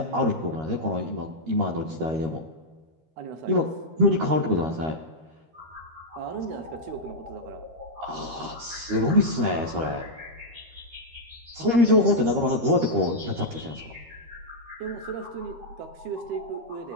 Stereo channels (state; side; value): late; left; 13 ms